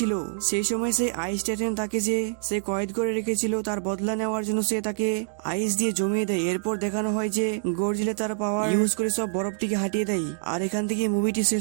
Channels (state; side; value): silent; left; digital silence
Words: সেই সময় সে আইস টাইটান তাকে যে সে কয়েদ করে রেখেছিল তার বদলা নেওয়ার জন্য সে তাকে আইস দিয়ে জমিয়ে দেয়। এরপর দেখানো হয় যে গরজিলা তার পাওয়ার ইউজ করে সব বরফটিকে হাঁটিয়ে দেয় আর এখান থেকে মুভিটি